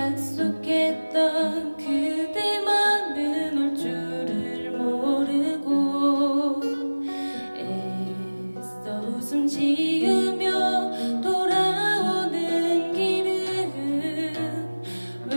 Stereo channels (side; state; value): both; inverted; correlation -1.00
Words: 그대만은 올 줄을 모르고 애써 웃음 지으며 돌아오는 길은